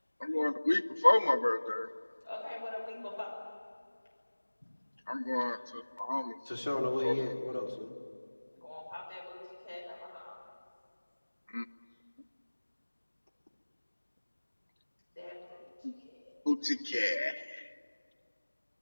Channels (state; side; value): inverted; both; correlation -1.00